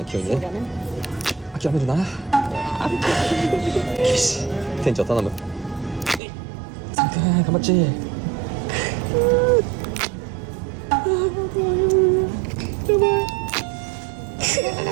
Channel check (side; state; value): left; drops out; at 6.2 s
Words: 急にね。諦めるな。よし店長頼む。サムくん頑張っち。やばい。